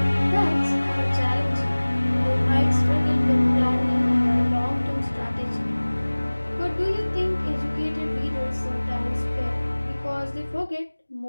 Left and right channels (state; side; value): inverted; both; correlation -1.00